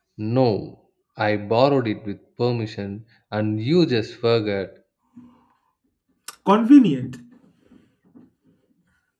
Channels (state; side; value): identical; both; correlation 1.00